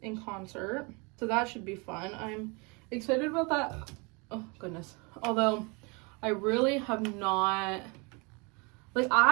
in concert, so that should be fun. I'm excited about that. Oh, goodness. Although, I really have not... Like,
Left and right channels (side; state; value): left; quieter; 29.8 dB